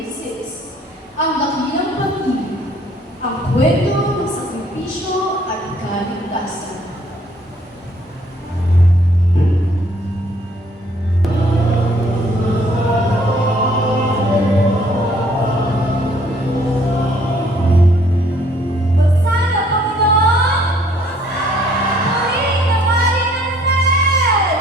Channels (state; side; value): normal; both; correlation 0.62